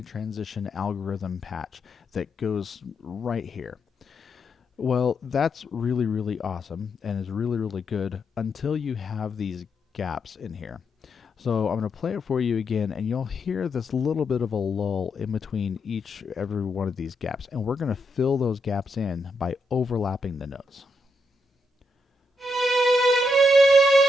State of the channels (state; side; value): normal; both; correlation 0.81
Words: transition algorithm patch that goes right here. Well, that's really awesome and is really good until you have these gaps in here. So I'm going to play it for you again, and you'll hear this little bit of a lull in between every one of these gaps, and we're going to fill those gaps in by overlapping the notes.